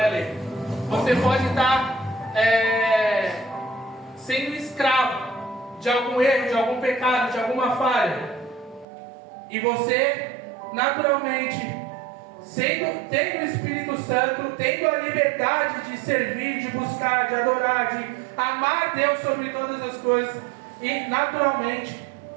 lei. Você pode estar sendo escravo de algum erro, de algum pecado, de alguma falha. E você, naturalmente, tendo o Espírito Santo, tendo a liberdade de servir, de buscar, de adorar, de amar Deus sobre todas as coisas, e naturalmente,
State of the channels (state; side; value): drops out; left; at 8.8 s